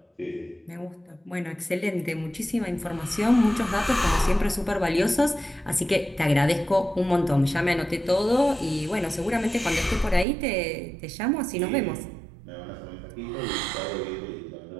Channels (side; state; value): left; drops out; at 10.2 s